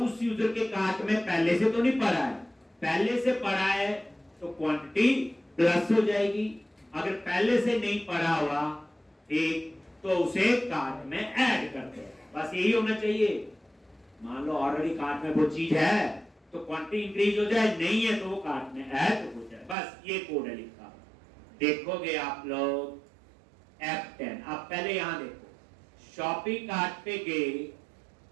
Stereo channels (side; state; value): left; drops out; at 19.8 s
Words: यूजर के कार्ट में पहले से तो नहीं पड़ा है। पहले से पड़ा है तो क्वांटिटी प्लस हो जाएगी, अगर पहले से नहीं पड़ा हुआ, ठीक, तो उसे कार्ट में ऐड करते हैं। बस यही होना चाहिए। मान लो ऑलरेडी कार्ट में वो चीज है तो क्वांटिटी इंक्रीज हो जाए, नहीं है तो वो कार्ट में ऐड हो जाए, बस ये कोड है लिखा। देखोगे आप लोग F10। आप पहले यहां देखो, शॉपिंग कार्ट पे गए,